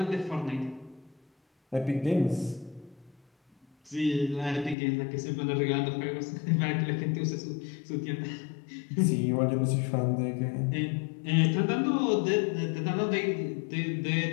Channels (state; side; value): drops out; right; at 4.8 s